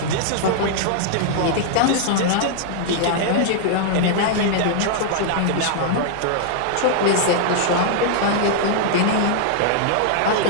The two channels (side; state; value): both; different; correlation -0.01